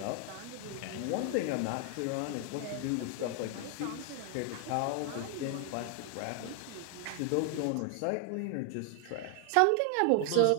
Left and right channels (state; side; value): different; both; correlation 0.00